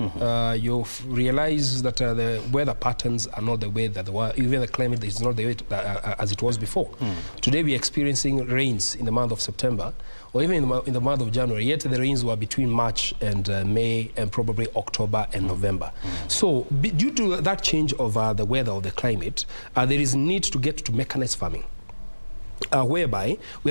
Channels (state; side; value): inverted; both; correlation -1.00